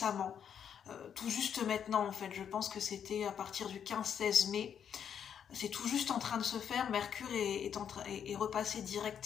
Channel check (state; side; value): quieter; right; 8.3 dB